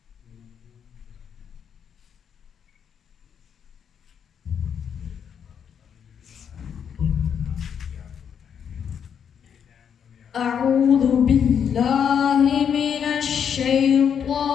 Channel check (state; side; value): quieter; right; 7.9 dB